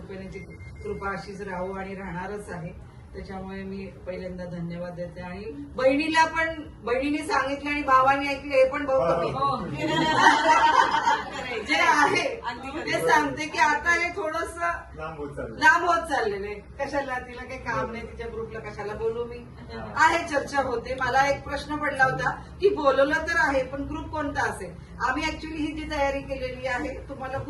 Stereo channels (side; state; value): both; identical; correlation 1.00